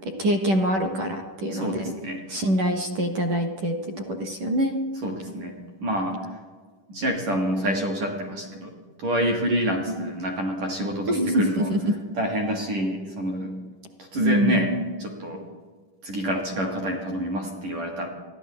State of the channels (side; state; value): left; late; 10 ms